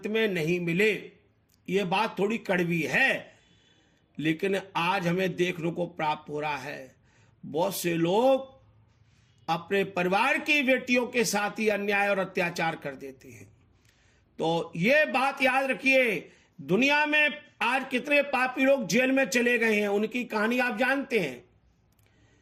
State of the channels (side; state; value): both; identical; correlation 1.00